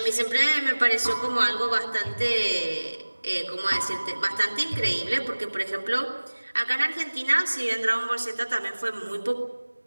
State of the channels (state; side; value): inverted; both; correlation -1.00